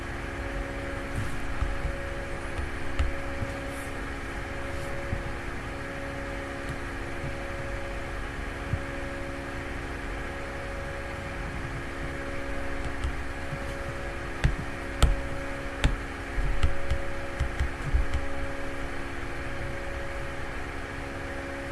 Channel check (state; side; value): identical; both; correlation 1.00